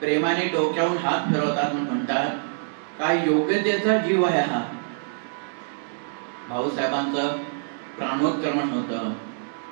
डोक्यावरून हात फिरवतात, म्हणतात, काय योग्यतेचा जीव आहे हा। भाऊसाहेबांचं प्राणोत्क्रमण होतं।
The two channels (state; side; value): silent; left; digital silence